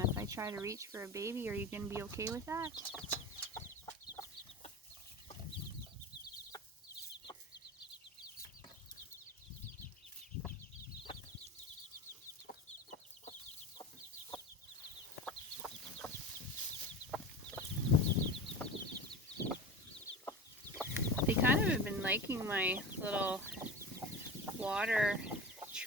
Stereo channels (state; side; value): normal; both; correlation 0.31